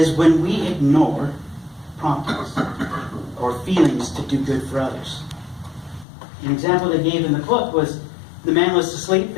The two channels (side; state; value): right; drops out; at 6.1 s